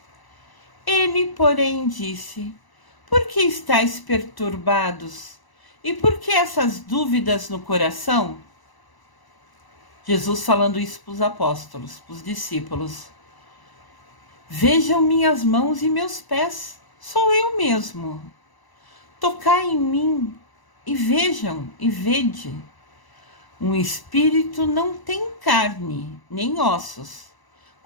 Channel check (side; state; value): right; late; 1.0 ms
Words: Ele, porém, disse: por que estáis perturbados? E por que essas dúvidas no coração? Jesus falando isso para os apóstolos, para os discípulos. Vejam minhas mãos e meus pés, sou eu mesmo. Tocai em mim e vejam e vede. Um espírito não tem carne, nem ossos,